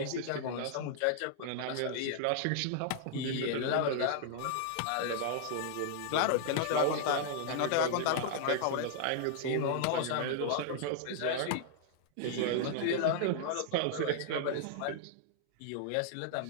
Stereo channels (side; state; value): both; different; correlation -0.01